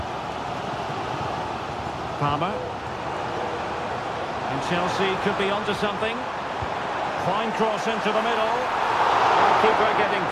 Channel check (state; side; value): identical; both; correlation 1.00